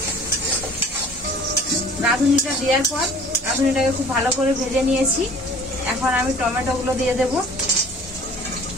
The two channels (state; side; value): normal; both; correlation 0.48